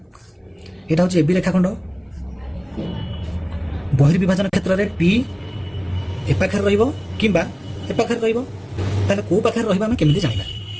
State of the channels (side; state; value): both; identical; correlation 1.00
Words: এটা হচ্ছে এবি রেখাখণ্ড। বহির্বিভাজন ক্ষেত্রে পি এ পাখে রহিব কিংবা এ পাখে রহিব তাহলে কোন পাখে রহিব আমি কেমিতি জানিবা?